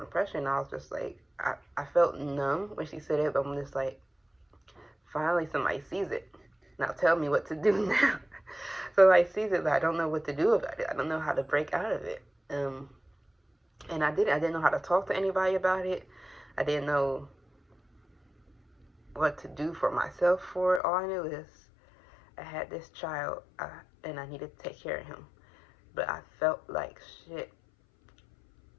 depression. And I was just like, I felt numb when she said it, but I'm just like, finally somebody sees it. Now tell me what to do now. So I sees it, but I don't know what to do about it. I don't know how to break out of it. And I didn't know how to talk to anybody about it. I didn't know what to do for myself for it. All I knew is I had this child, and I needed to take care of him. But I felt like shit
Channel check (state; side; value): drops out; right; at 20.8 s